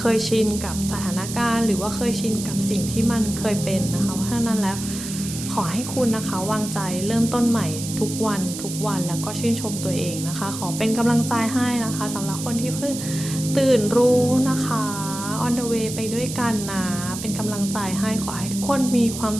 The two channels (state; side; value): noise; right; hiss, 8 dB below the sound